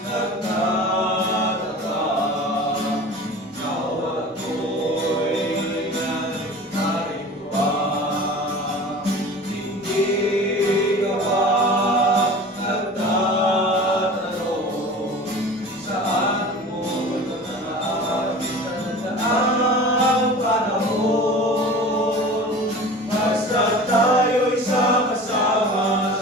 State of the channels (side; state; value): both; normal; correlation 0.38